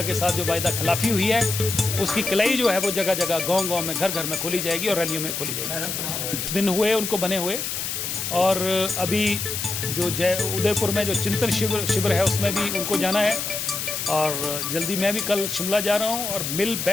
के साथ जो वायदा खिलाफी हुई है उसकी कलाई जो है वो जगह जगह गांव-गांव में घर-घर में खोली जाएगी और रैलियों में खोली जाएगी। दिन हुए उनको बने हुए और अभी जो उदयपुर में जो चिंतन शिविर है उसमें भी उनको जाना है और जल्दी मैं भी कल शिमला जा रहा हूं और मिल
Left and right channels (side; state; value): left; noise; hiss, 3 dB below the sound